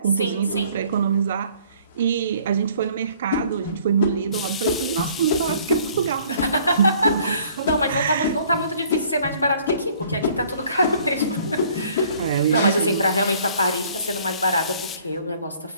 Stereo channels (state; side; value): inverted; both; correlation -0.57